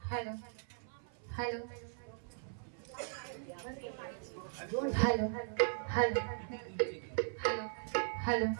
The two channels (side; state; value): left; silent; 52 dB below the other